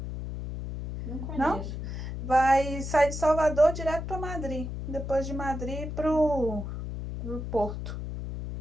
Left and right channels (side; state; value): left; noise; hum, 6 dB below the sound